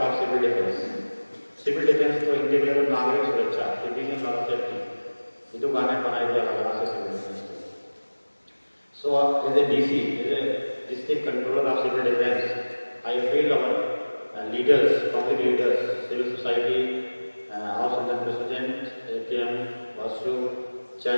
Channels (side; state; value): both; inverted; correlation -1.00